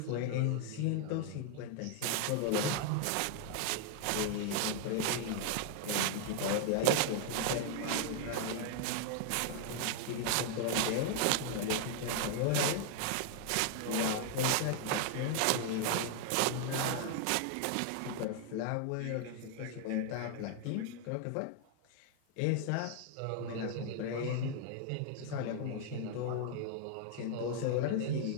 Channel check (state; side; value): different; both; correlation 0.00